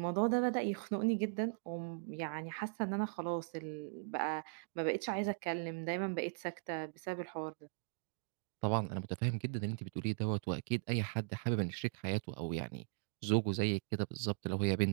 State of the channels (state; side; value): silent; left; digital silence